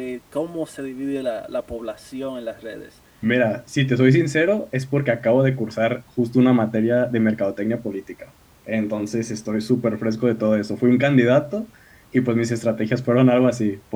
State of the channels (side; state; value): both; identical; correlation 1.00